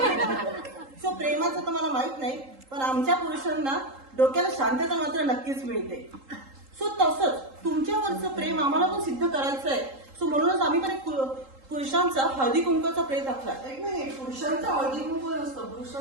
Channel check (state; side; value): late; left; 3.8 ms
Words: सो प्रेमाचं तर मला माहित नाही, पण आमच्या पुरुषांना डोक्याला शांतता मात्र नक्कीच मिळते. सो तसंच तुमच्यावरचं प्रेम आम्हाला पण सिद्ध करायचं आहे. सो म्हणूनच आम्ही पण एक पुरुषांचा हळदी कुंकाचा प्रेत आखलाय. एक मिनिट, पुरुषांचा हळदी कुंकू नसतं,